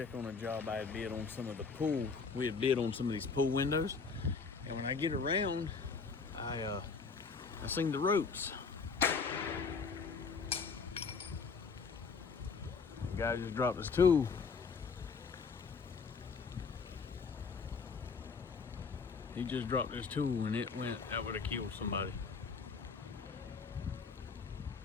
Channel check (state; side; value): quieter; right; 5.1 dB